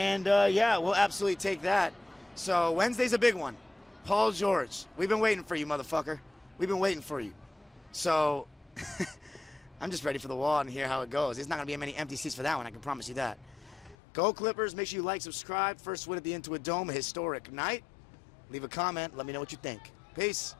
yeah, we'll absolutely take that. So Wednesday's a big one. Paul George, we've been waiting for you, motherfucker. We've been waiting for you. So I'm just ready for the wall and hear how it goes. There's not going to be many empty seats for that one, I can promise you that. Go Clippers. Make sure you like, subscribe. First win at the Intuit Dome, a historic night. Leave a comment. Let me know what you think. Peace.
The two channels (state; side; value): drops out; right; at 14.0 s